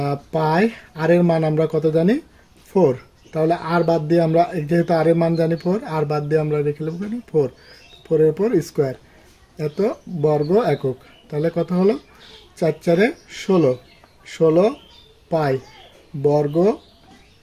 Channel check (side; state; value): both; identical; correlation 1.00